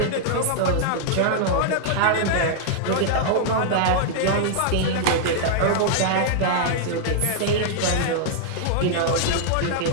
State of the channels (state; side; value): different; both; correlation -0.01